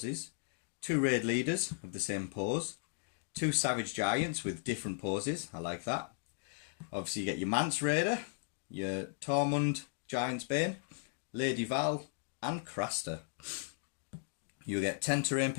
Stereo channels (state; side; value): silent; right; digital silence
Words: 2 raid leaders of the same pose, 2 savage giants with different poses. I like that. Obviously, you get your Mance Rayder, your Tormund Giantsbane, Lady Val, and Craster. You'll get 10 terrain